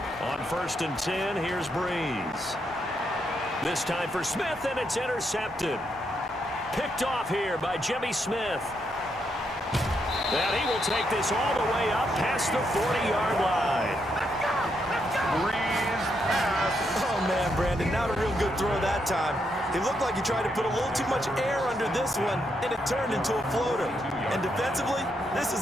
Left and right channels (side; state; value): both; normal; correlation 0.79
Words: On 1st and 10, here's Breeze. This time for Smith, and it's intercepted. Picked off here by Jimmy Smith. And he will take this all the way up past the 40-yard line. Breeze pass. Oh, man, Brandon, not a real good throw that time. It looked like he tried to put a little too much air under this one, and it turned into a floater. And defensively, this